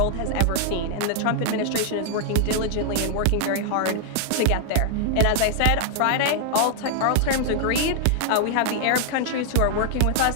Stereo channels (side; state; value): both; different; correlation 0.00